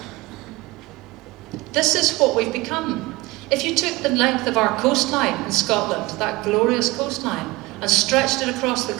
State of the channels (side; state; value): left; quieter; 21.3 dB